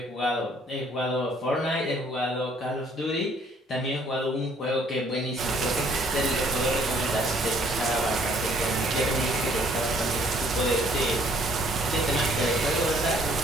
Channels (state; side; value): normal; both; correlation 0.61